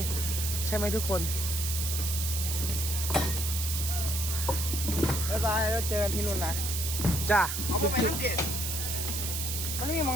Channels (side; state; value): right; noise; hiss, 2 dB below the sound